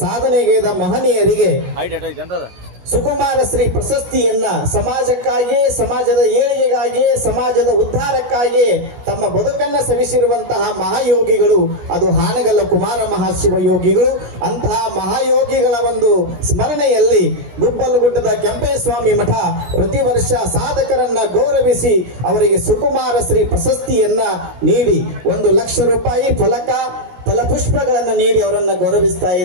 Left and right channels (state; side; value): late; left; 16 ms